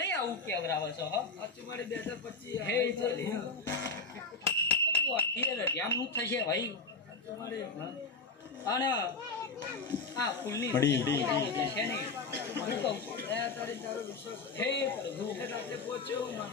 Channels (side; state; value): right; quieter; 4.0 dB